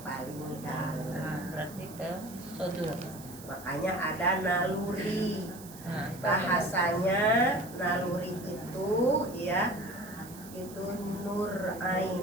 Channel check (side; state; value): right; noise; hiss, 17 dB below the sound